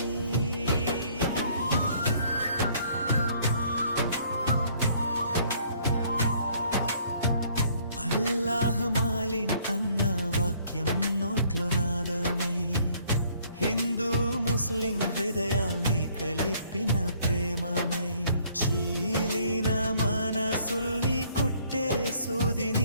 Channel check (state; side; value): inverted; both; correlation -0.62